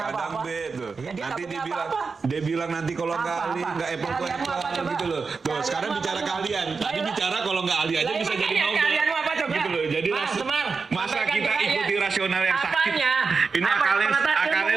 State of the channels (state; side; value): quieter; left; 4.8 dB